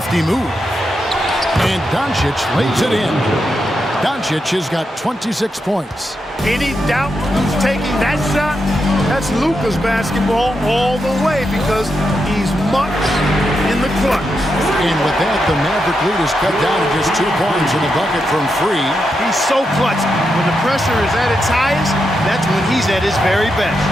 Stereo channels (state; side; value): normal; both; correlation 0.85